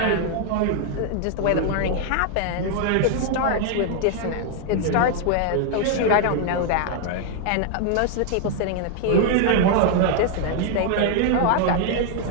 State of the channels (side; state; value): both; different; correlation 0.00